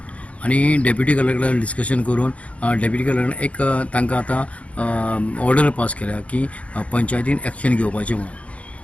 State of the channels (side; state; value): right; late; 0.064 ms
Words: आनी डेप्युटी कलेक्टर डिस्कशन करून डेप्युटी कलेक्टर एक तांकां आतां ऑर्डर पास केल्या की पंचायतीन एक्शन घेवपाचें